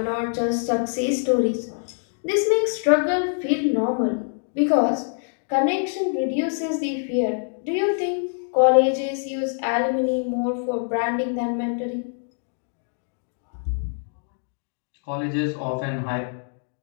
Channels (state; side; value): silent; right; 62 dB below the other